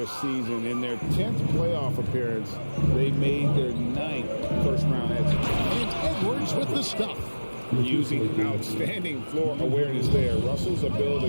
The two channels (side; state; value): both; inverted; correlation -1.00